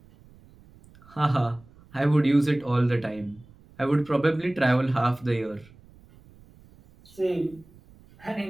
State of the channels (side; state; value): right; noise; rumble, 26 dB below the sound